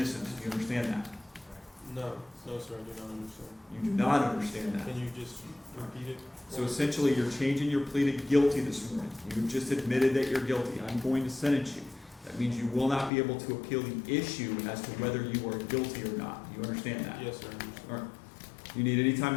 Do you understand that? No. No, sir. I do not understand. You do not understand that. Can you just repeat it? So essentially, you're changing your plea to guilty this morning. You've just admitted that you're guilty. I'm going to sentence you. That means you will not be able to appeal the issue as to whether you are guilty or not. Do you understand that? Yes, sir. I understand. All right. Do you need any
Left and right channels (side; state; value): right; drops out; at 13.1 s